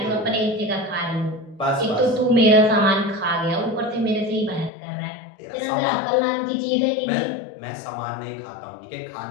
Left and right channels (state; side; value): drops out; right; at 4.7 s